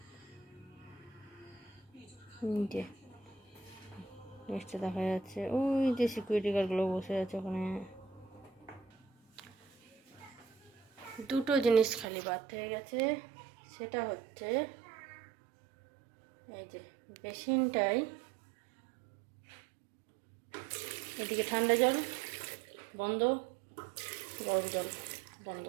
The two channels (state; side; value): drops out; left; at 12.1 s